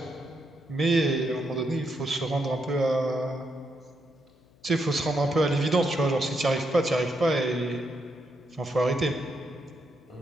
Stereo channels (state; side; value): noise; left; hum, 30 dB below the sound